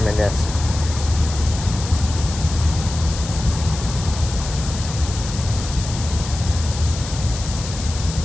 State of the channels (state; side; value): noise; left; hiss, 10 dB below the sound